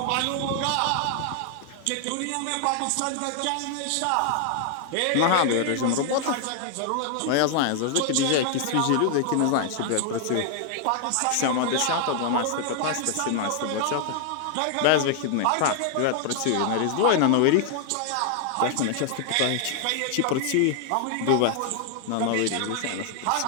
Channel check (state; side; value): different; both; correlation 0.00